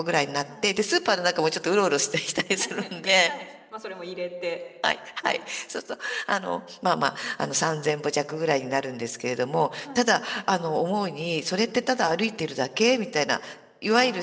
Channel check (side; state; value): both; identical; correlation 1.00